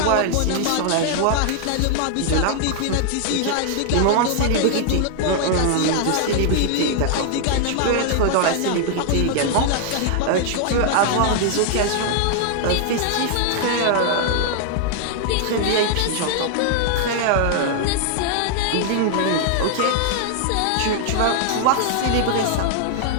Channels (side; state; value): both; different; correlation -0.01